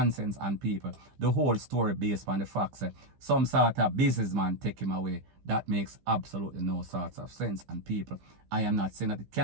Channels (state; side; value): late; left; 15 ms